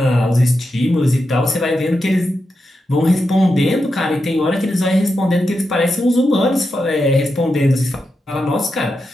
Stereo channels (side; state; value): both; normal; correlation 0.87